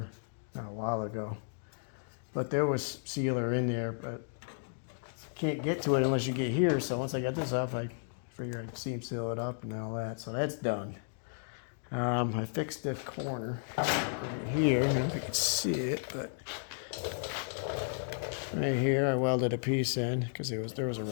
a while ago. But there was sealer in there, but can't get to it unless you get here. So once I got this off, I figured I'd seam seal it up and all that. So that's done. I fixed the corner right here. I don't know if you can see it, but right here I welded a piece in because there was a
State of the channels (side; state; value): right; silent; digital silence